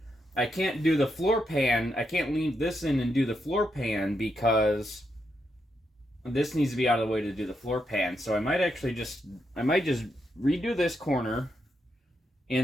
I can't do the floor pan. I can't leave this in and do the floor pan because this needs to be out of the way to do the floor pan. So I might actually just redo this corner,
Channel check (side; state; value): both; normal; correlation 0.82